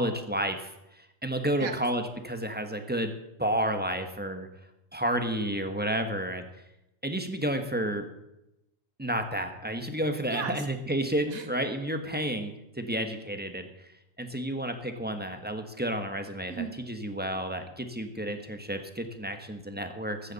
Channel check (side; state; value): both; normal; correlation 0.15